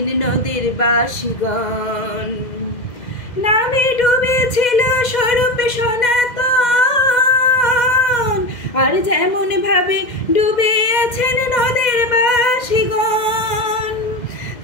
নদের বাসীগণ। নামে ডুবেছিল স্বরূপ সনাতন, আর যেমন ভাবে ডুবে আছেন নদের বাসীগণ।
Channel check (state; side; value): late; right; 2.1 ms